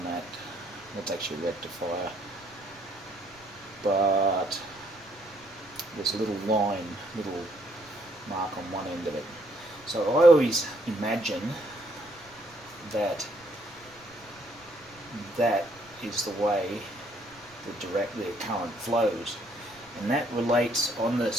that. That's actually a rectifier. But there's a little line, little mark on one end of it. So I always imagine that that is the way the current flows, and that relates on the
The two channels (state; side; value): noise; right; rumble, 27 dB below the sound